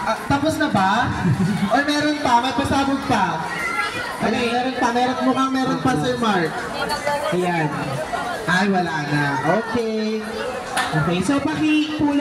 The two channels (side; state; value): both; identical; correlation 1.00